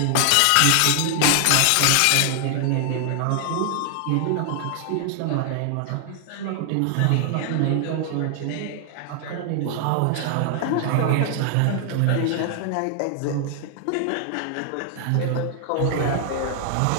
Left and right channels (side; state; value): both; different; correlation 0.00